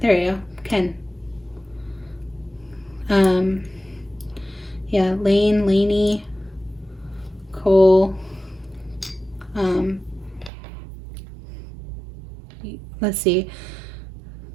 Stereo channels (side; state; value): left; drops out; at 10.5 s